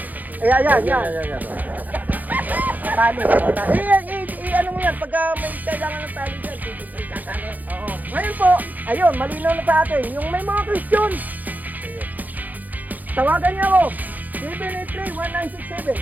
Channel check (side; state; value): left; late; 0.082 ms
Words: Ayan. Tali. Ano mo yan, pagka may kailangan ng tali dyan, tali. Oo. Ngayon po, ayun, malinaw na sa atin. Yung may mga question, tawagan niyo ako. 783-1967.